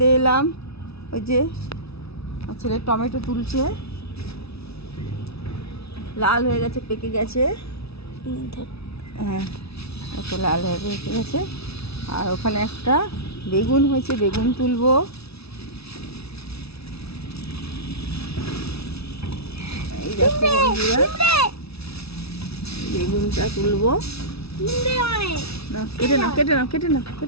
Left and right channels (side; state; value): right; late; 0.78 ms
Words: এলাম। ওই যে ছেলে টমেটো তুলছে, লাল হয়ে গেছে, পেকে গেছে। হ্যাঁ, এত লাল হয়ে পেকে গেছে। আর ওখানে একটা বেগুন হয়েছে, বেগুন তুলবো। এই দেখো বন্ধুরা, বেগুনটা তুলবো। না, কেটে নাও, কেটে নাও, কেটে নাও,